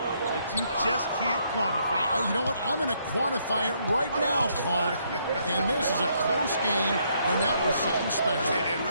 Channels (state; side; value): inverted; both; correlation -0.72